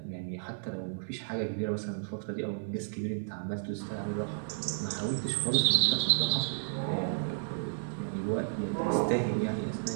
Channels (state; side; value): silent; left; digital silence